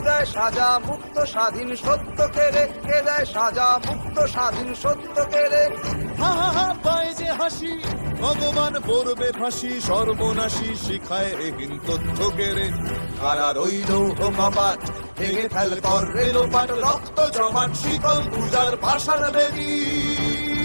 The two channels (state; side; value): inverted; both; correlation -1.00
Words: দেয় সাজা মুক্ত স্বাধীন সত্য কেড়ে, কে দেয় সাজা মুক্ত স্বাধীন সত্য কেড়ে। হা হা হা পায় যে হাসি ভগবান পড়বে ফাঁসি, সর্বনাশী শিখায় এহীন তথ্য কেড়ে। কারার ওই লৌহ কপাট ভেঙে ফেল কর রেলোপাট, রক্ত জমাট শিকল পূজার পাষাণ বেদী।